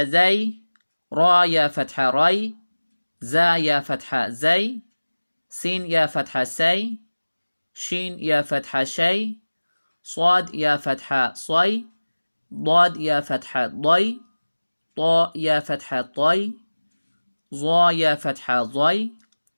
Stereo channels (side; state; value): both; inverted; correlation -1.00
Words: zay, ra ya fatha ray, za ya fatha zay, sin ya fatha say, shin ya fatha shay, swad ya fatha sway, ضاد يا فتحة ضي، طاء يا فتحة طي، ظا يا فتحة ضي،